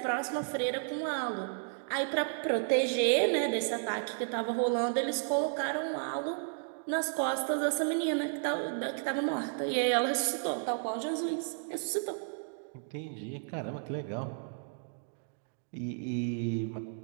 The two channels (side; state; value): left; silent; digital silence